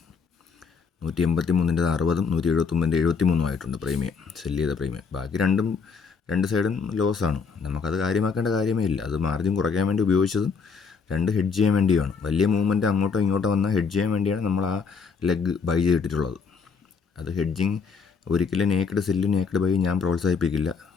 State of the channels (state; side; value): quieter; right; 5.5 dB